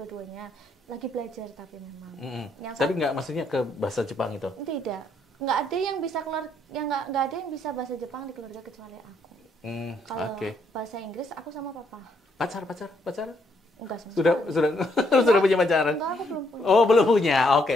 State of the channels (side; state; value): both; normal; correlation 0.73